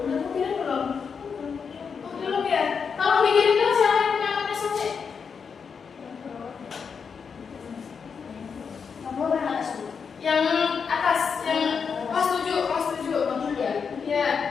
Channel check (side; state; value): right; quieter; 6.1 dB